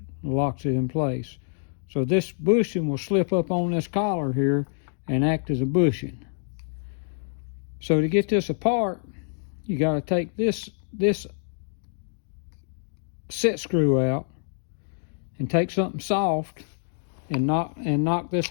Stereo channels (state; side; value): silent; right; digital silence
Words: and locks it in place. So this bushing will slip up on this collar here and act as a bushing. So to get this apart, you got to take this set screw out and take something soft and knock this